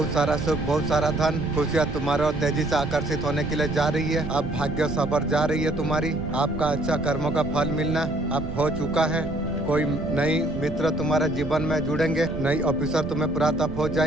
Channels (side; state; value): right; noise; rumble, 9 dB below the sound